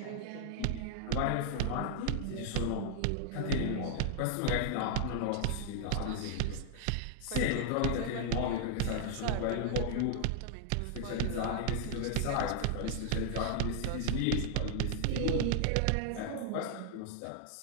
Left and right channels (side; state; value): both; different; correlation -0.01